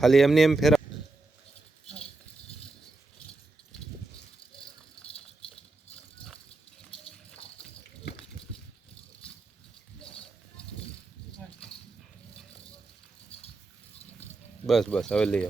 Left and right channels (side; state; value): left; quieter; 3.4 dB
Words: એમને એમ ફેરા બસ બસ હવે લઈ